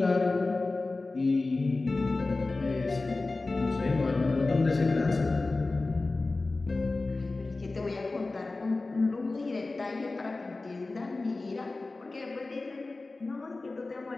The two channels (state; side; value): quieter; right; 3.4 dB